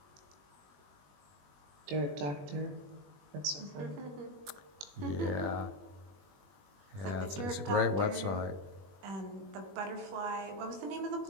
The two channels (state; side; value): late; left; 21 ms